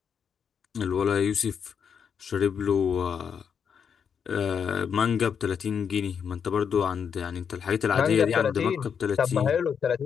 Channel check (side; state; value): right; quieter; 7.1 dB